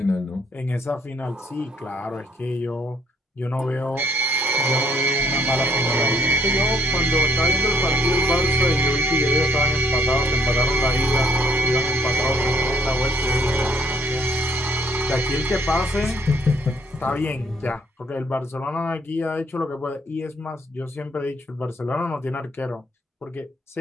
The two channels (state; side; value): normal; both; correlation 0.65